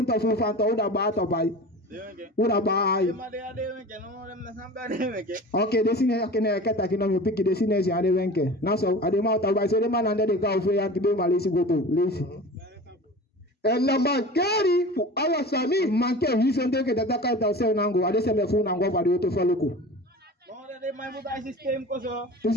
to fu fa to da ba to bai. Ura bai. Okay, desine akene kata kino mi piki desine si ade wenke. Na so ade ma ta bai so de man ande de ka ofe ya kibe malisi goto. Lesi. Na magari fu awa sami manke hisonde ke data ka ta se nango ade se me fu nango ba de to faluko. De mai muda sistem ko so. O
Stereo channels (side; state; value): both; normal; correlation 0.36